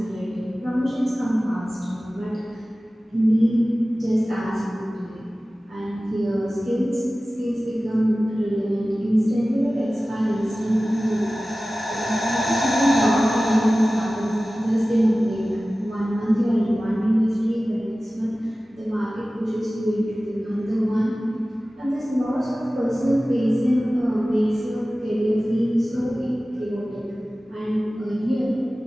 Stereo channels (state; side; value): normal; both; correlation 0.96